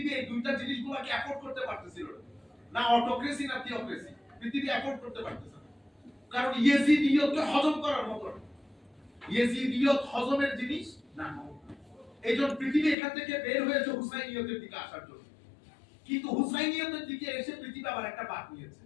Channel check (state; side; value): drops out; right; at 13.0 s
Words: এই দুইটা জিনিসগুলোকে অ্যাফোর্ড করতে পারতেছিল না, অটোক্রেসি না থিওক্রেসি। পৃথিবী অ্যাফোর্ড করতে পারতেছে না, কারণ ইয়েজিদিয়তকে হজম করার মতো না। ইয়েজিদিয়ত হজমের জিনিস না। এইজন্য পৃথিবী এখান থেকে বের হয়েছে হুসাইনিয়তের দিকে আসার জন্য। কিন্তু হুসাইনিয়তের দিকে এসে পৃথিবী আবার একটা বাঁক নিয়েছে,